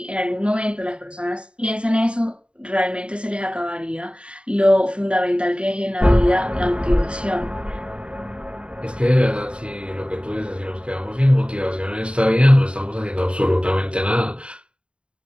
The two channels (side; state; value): left; late; 0.055 ms